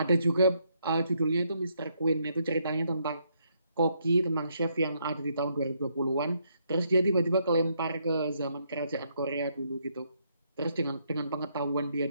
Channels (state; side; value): inverted; both; correlation -0.74